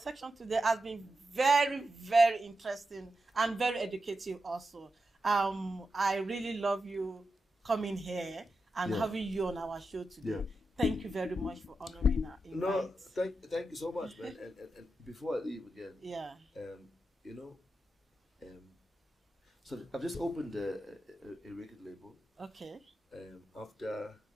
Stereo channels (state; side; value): normal; both; correlation 0.89